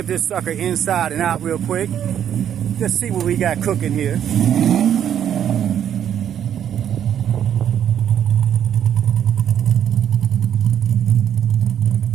this sucker inside and out real quick. Just see what we got cooking here.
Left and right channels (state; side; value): quieter; left; 9.6 dB